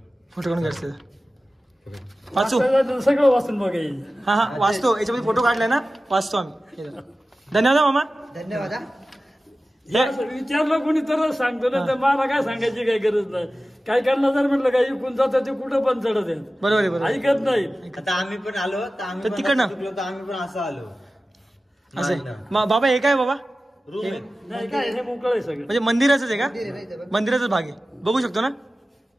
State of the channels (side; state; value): both; normal; correlation 0.95